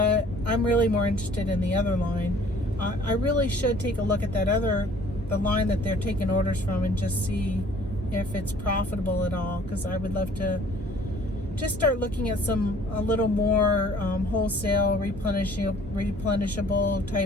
I'm really more interested in the other line. I really should take a look at the line that they're taking orders from, and just see if it's profitable at all, because I would love to just start looking at a little more wholesale replenishable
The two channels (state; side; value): normal; both; correlation 0.54